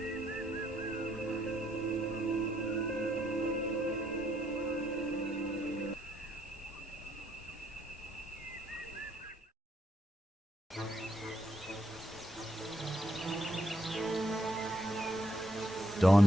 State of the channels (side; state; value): both; normal; correlation 0.75